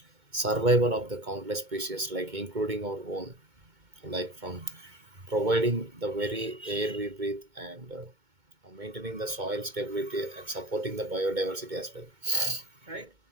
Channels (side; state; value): left; late; 2.2 ms